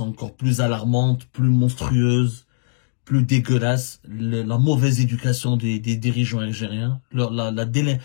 encore plus alarmante, plus monstrueuse, plus dégueulasse, la mauvaise éducation des dirigeants algériens,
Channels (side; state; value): right; silent; digital silence